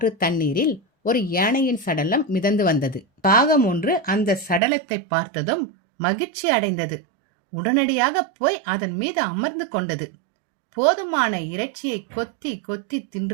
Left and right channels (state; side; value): drops out; left; at 4.6 s